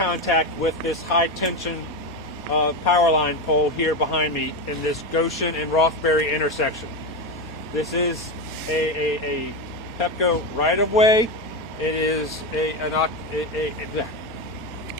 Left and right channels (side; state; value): both; normal; correlation 0.15